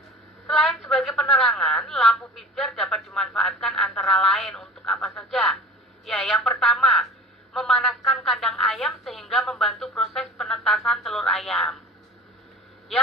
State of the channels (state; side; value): normal; both; correlation 0.39